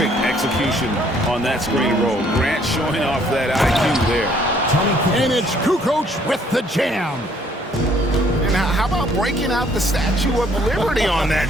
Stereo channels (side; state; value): both; normal; correlation 0.63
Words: execution on that screen roll. Grant showing off that IQ there. And it's Kukoc with the jam. And how about breaking out the Statue of Liberty on that